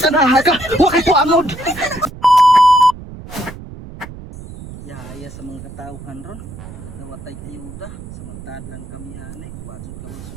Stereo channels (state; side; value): noise; right; rumble, 14 dB below the sound